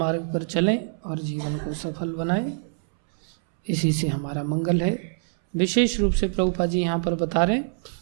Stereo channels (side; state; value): left; silent; 62 dB below the other